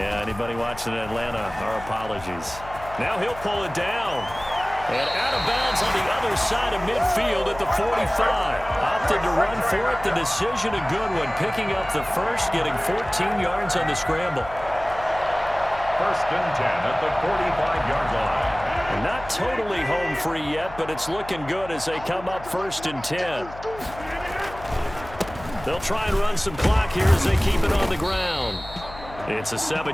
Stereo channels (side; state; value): left; noise; hum, 16 dB below the sound